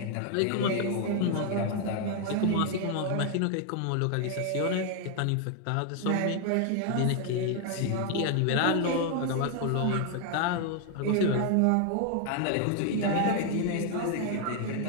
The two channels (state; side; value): different; both; correlation 0.00